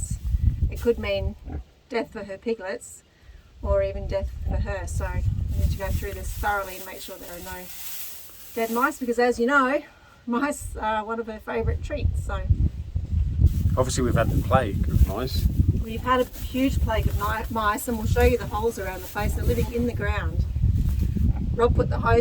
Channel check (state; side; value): identical; both; correlation 1.00